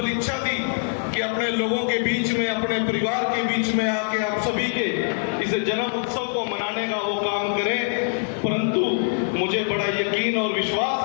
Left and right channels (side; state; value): right; silent; 61 dB below the other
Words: इच्छा थी कि अपने लोगों के बीच में, अपने परिवार के बीच में आके आप सभी के इस जन्म उत्सव को मनाने का वो काम करें, परंतु मुझे बड़ा यकीन और विश्वास